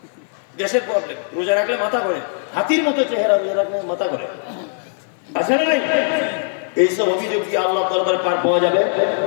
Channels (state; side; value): silent; right; 59 dB below the other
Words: গ্যাসের প্রবলেম, রোজা রাখলে মাথা করে, হাতির মতো চেহারা, রোজা রাখলে মাথা করে, আছে না? এইসব অভিযোগ কি আল্লাহ দরবারে পার পাওয়া যাবে?